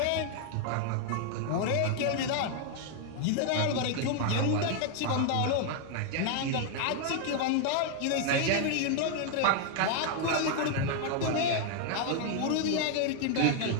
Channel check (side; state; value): both; different; correlation 0.00